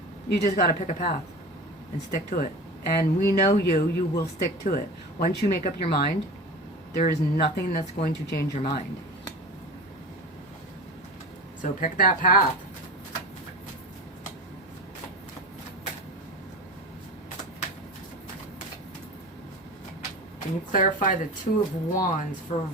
You just got to pick a path and stick to it. And we know you will stick to it. Once you make up your mind, there is nothing that's going to change your mind. So pick that path. Can you clarify the Two of Wands for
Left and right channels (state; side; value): normal; both; correlation 0.32